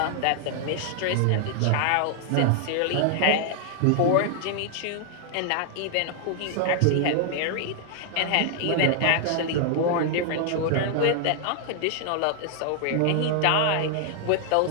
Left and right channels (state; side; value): different; both; correlation 0.00